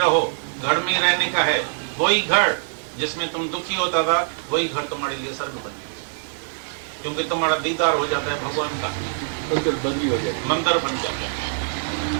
घर में रहने का है। वही घर जिसमें तुम दुखी होता था वही घर तुम्हारे लिए स्वर्ग बन गया, क्योंकि तुम्हारा दीदार हो जाता है भगवान का, मंदिर बंदी हो जाए, मंदिर बन जाता है।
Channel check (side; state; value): left; silent; digital silence